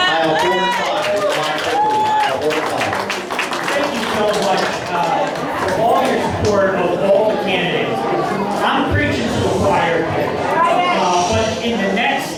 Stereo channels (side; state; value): both; identical; correlation 1.00